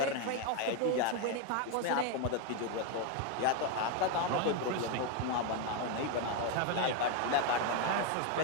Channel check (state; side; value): different; both; correlation 0.02